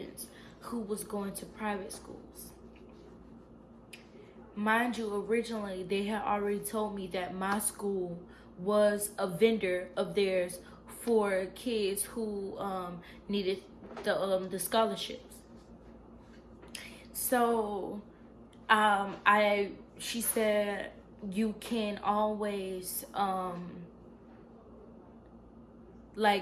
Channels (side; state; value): both; identical; correlation 1.00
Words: who was going to private schools. Mind you, originally they had already told me that my school was a vendor of theirs for kids who needed the scholarships. So she said you can always redo